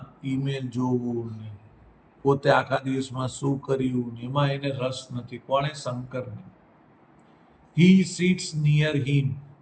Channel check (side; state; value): both; identical; correlation 1.00